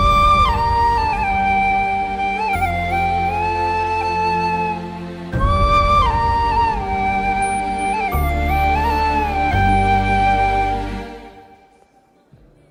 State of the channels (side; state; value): both; identical; correlation 1.00